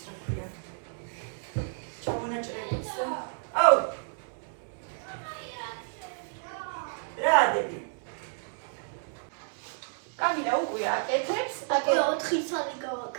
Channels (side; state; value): left; silent; digital silence